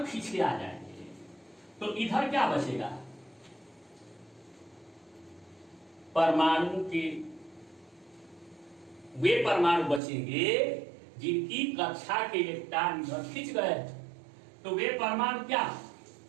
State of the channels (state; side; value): drops out; left; at 10.0 s